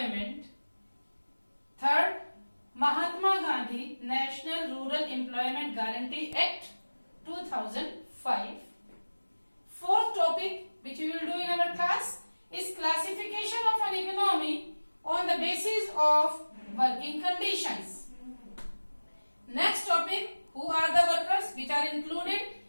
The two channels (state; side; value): inverted; both; correlation -1.00